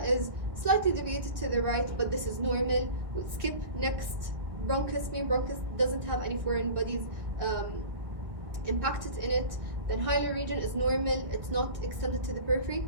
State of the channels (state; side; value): late; left; 1.7 ms